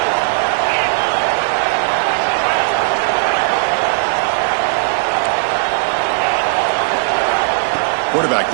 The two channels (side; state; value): left; silent; digital silence